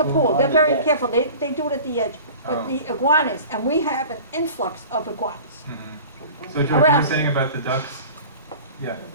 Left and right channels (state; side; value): inverted; both; correlation -0.40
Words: pool. On They're the very deck. careful. They do it at the edge. But Oh. the iguanas, and we have an influx of iguanas. Mhm. So George, you were Around. saying about the ducks? Yeah,